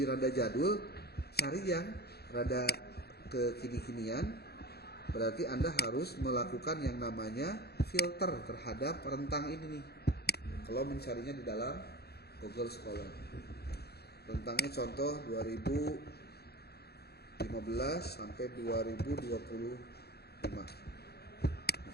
rada jadul, cari yang rada kekini-kinian. Berarti Anda harus melakukan yang namanya filter terhadap rentang ini nih. Kalau mencarinya di dalam Google Scholar. Rentangnya contoh 2015 sampai 2025.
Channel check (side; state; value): right; late; 0.47 ms